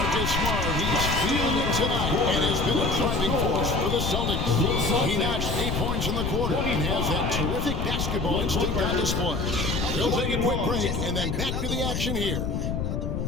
Smart, he's feeling it tonight and has been a driving force for the Celtics. He notched 8 points in the quarter and has that terrific basketball instinct on display. They'll take a quick break and then back to the action here.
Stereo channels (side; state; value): left; noise; rumble, 1 dB below the sound